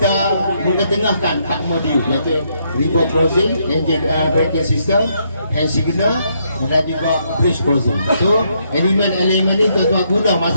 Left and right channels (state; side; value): inverted; both; correlation -0.74